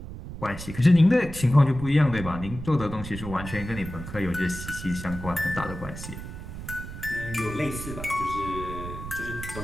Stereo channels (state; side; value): noise; right; rumble, 10 dB below the sound